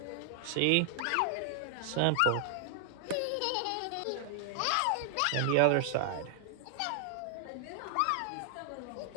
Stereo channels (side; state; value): both; different; correlation 0.00